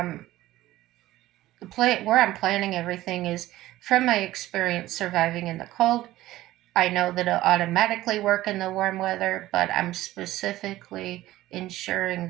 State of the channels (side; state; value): left; quieter; 15.8 dB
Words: planning everything is, from my experience surviving in the cold. I know that it'll automatically work in the warm weather, but I'm specifically ensuring